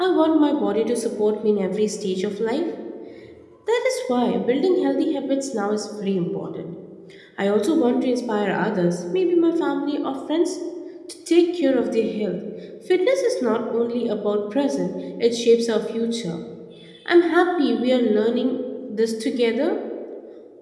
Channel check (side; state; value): both; identical; correlation 1.00